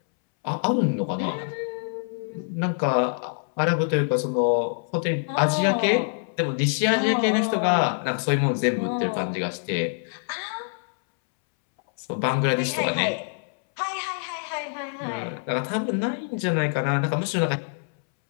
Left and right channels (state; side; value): silent; right; 62 dB below the other